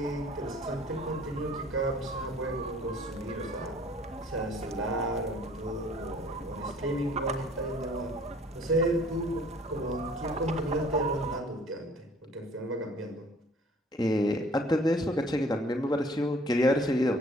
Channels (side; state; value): both; normal; correlation 0.54